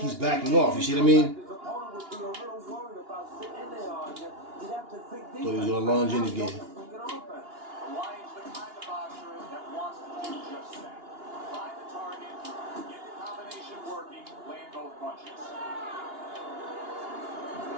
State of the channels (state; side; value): late; left; 2.8 ms